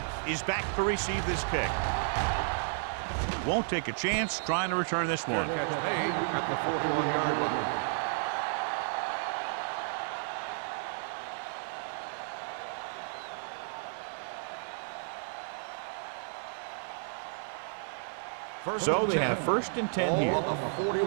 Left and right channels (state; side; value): silent; left; 56 dB below the other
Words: is back to receive this kick. Won't take a chance trying to return this one. Gets made at the 41-yard line. So they have first and 10 here. Ball on the